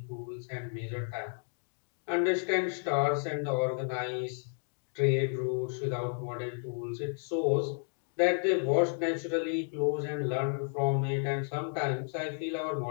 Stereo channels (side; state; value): right; silent; 56 dB below the other